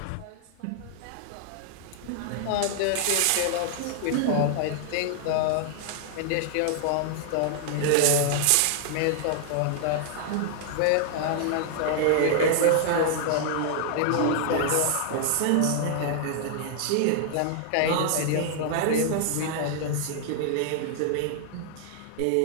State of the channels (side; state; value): both; different; correlation 0.00